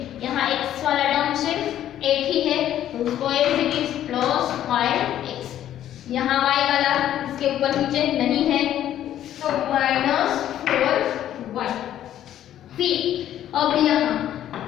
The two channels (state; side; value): quieter; right; 11.6 dB